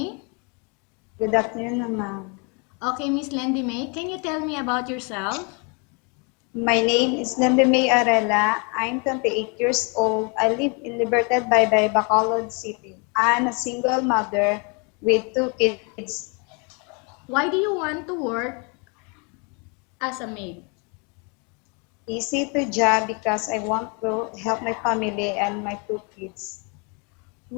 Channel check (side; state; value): right; quieter; 33.9 dB